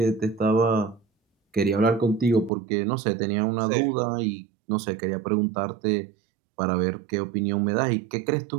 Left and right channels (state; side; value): drops out; left; at 2.5 s